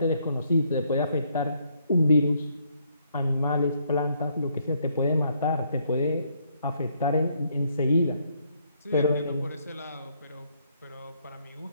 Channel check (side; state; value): both; inverted; correlation -0.71